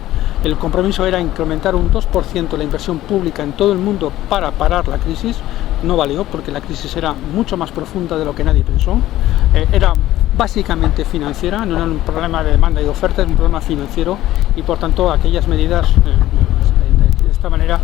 El compromiso era incrementar un 2% la inversión pública en todo el mundo para parar la crisis. No valió porque la crisis era mucho más profunda de lo que nadie pensó. Era básicamente financiera, no era un problema de demanda y de oferta, es un problema financiero y por tanto aquellas medidas de esta manera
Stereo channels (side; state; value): right; quieter; 14.7 dB